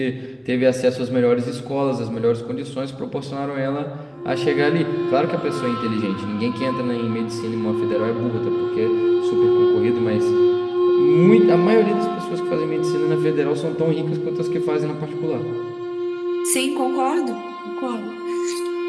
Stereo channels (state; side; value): identical; both; correlation 1.00